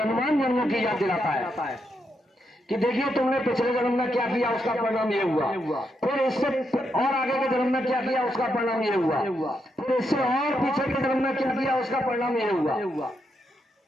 जन्मों की याद दिलाता है कि देखिए तुमने पिछले जन्म में क्या किया, उसका परिणाम ये हुआ, फिर इससे और आगे के जन्म में क्या किया, उसका परिणाम ये हुआ, फिर इससे और पीछे के जन्म में क्या किया, उसका परिणाम ये हुआ।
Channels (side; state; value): both; normal; correlation 0.81